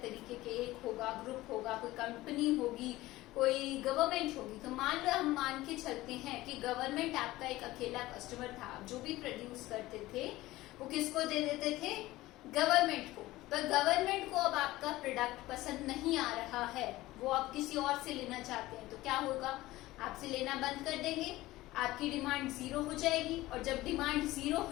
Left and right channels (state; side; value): quieter; right; 17.6 dB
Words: तरीके के, एक होगा, ग्रुप होगा, कोई कंपनी होगी, कोई गवर्नमेंट होगी, तो मान लो हम मान के चलते हैं कि गवर्नमेंट आपका एक अकेला कस्टमर था. जो भी प्रोड्यूस करते थे वो किसको दे देते थे? गवर्नमेंट को. पर गवर्नमेंट को अब आपका प्रोडक्ट पसंद नहीं आ रहा है, वो आप किसी और से लेना चाहते हैं, तो क्या होगा? आपसे लेना बंद कर देंगे, आपकी डिमांड जीरो हो जाएगी, और जब डिमांड जीरो